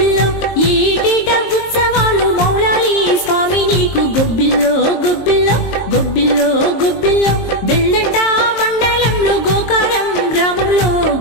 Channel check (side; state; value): right; late; 22 ms